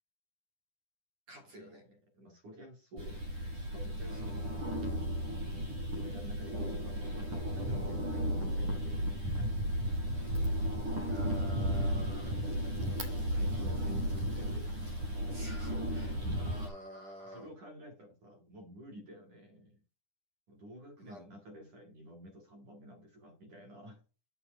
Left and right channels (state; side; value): late; left; 10 ms